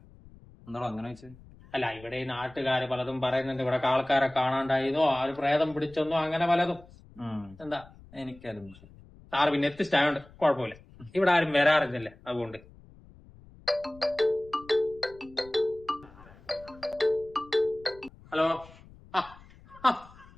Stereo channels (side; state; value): left; noise; rumble, 23 dB below the sound